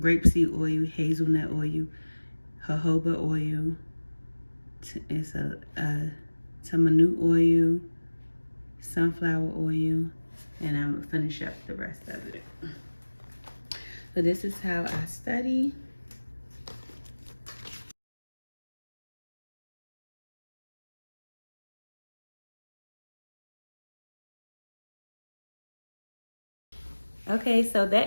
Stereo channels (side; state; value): both; inverted; correlation -1.00